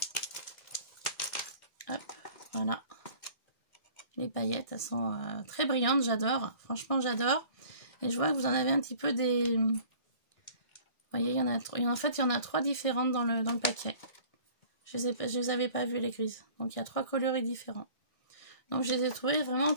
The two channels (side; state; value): right; late; 1.6 ms